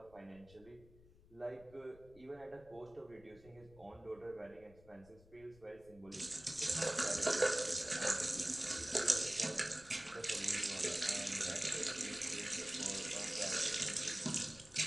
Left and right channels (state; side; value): noise; left; rumble, 24 dB below the sound